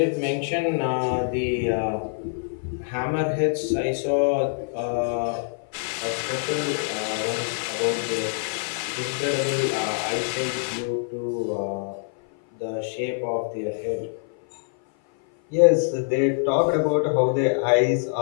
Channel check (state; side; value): silent; right; 56 dB below the other